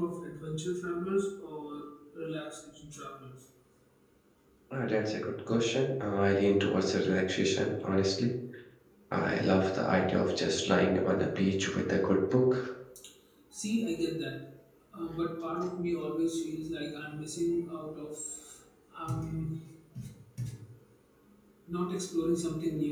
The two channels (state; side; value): identical; both; correlation 1.00